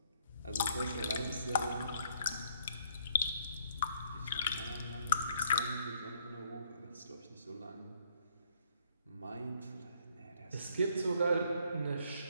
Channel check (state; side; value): inverted; both; correlation -0.65